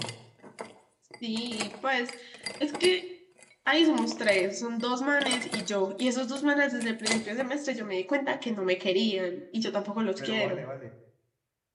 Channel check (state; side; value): identical; both; correlation 1.00